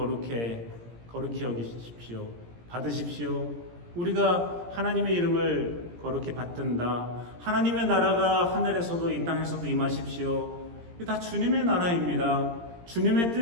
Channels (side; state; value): left; late; 17 ms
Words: 여기십시오. 받으십시오. 우리가 하나님의 이름을 거룩히 받든다. 하나님의 나라가 하늘에서도 이 땅에서도 임하십시오. 이게 다 주님의 나라입니다. 주님의